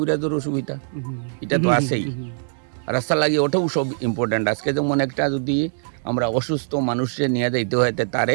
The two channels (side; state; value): left; silent; 64 dB below the other